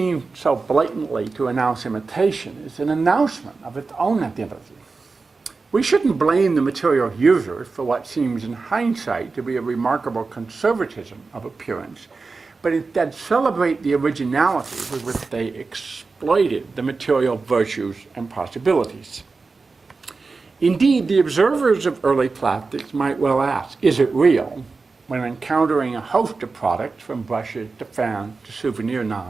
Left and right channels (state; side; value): quieter; left; 4.2 dB